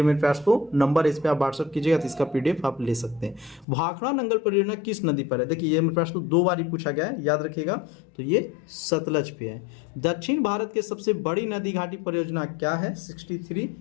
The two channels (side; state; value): right; drops out; at 3.7 s